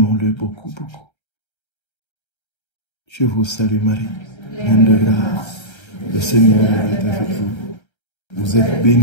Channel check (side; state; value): right; late; 1.3 ms